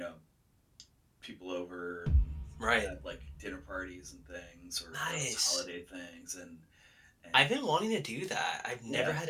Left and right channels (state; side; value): identical; both; correlation 1.00